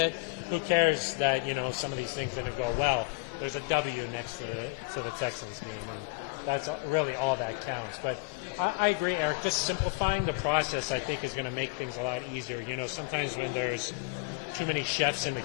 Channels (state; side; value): quieter; right; 26.4 dB